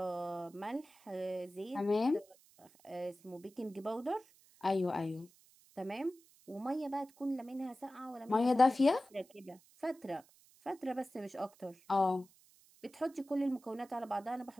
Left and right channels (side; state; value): right; noise; hiss, 27 dB below the sound